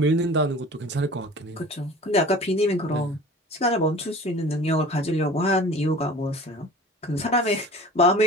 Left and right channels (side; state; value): both; normal; correlation 0.42